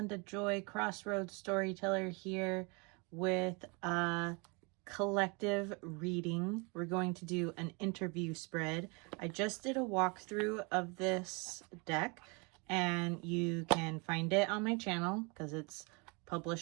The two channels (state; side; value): quieter; left; 30.7 dB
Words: Joy, Crossroads Storyteller here with a collective reading. We're going to do an interview spread. I just did a walkthrough of this deck, and you can find it on my channel because it's